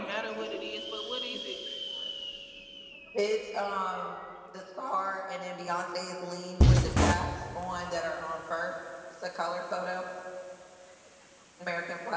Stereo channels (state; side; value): identical; both; correlation 1.00